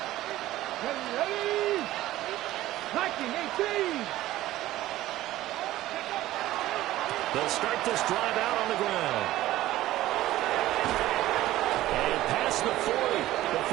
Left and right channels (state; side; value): quieter; left; 15.3 dB